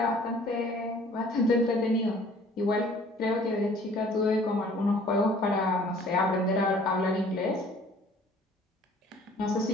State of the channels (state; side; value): normal; both; correlation 0.54